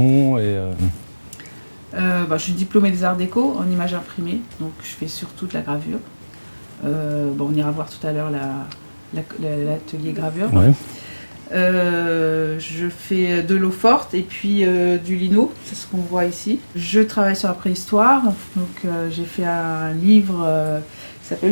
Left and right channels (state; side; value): inverted; both; correlation -1.00